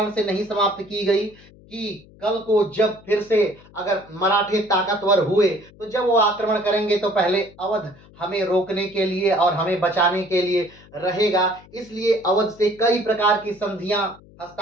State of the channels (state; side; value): noise; left; hum, 24 dB below the sound